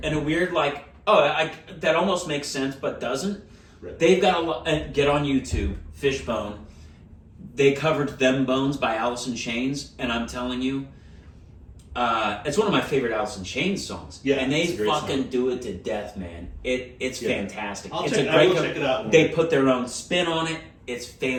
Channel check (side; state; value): both; identical; correlation 1.00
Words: like, that almost makes sense, but doesn't. Right. They've got get on YouTube, Fishbone. They covered "Them Bones" by Alice in Chains, and I'm telling you, it's one of my favorite Alice in Chains songs. Yeah, and they fucking do it to death, man. It's fantastic. I will check it out. They put their own spin on it. It's